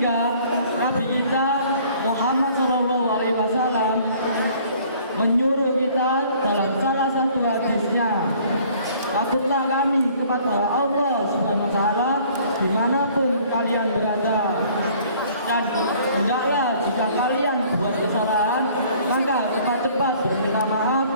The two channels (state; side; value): inverted; both; correlation -0.56